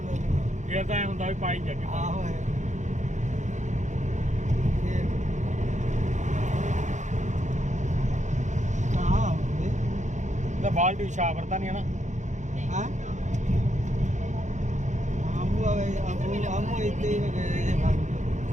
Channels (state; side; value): late; left; 0.35 ms